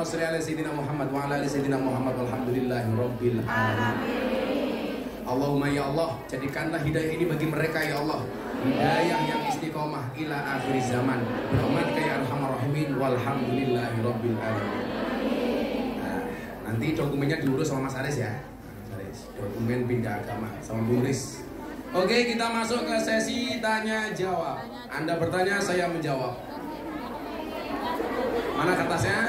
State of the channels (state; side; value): identical; both; correlation 1.00